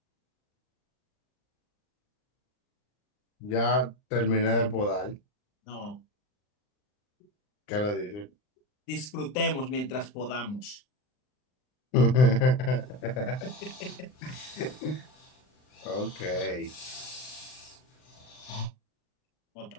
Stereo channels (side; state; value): right; late; 39 ms